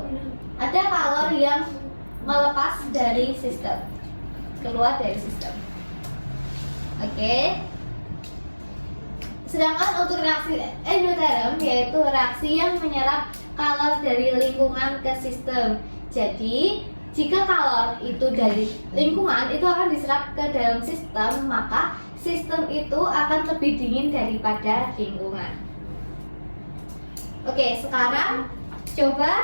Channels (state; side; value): inverted; both; correlation -1.00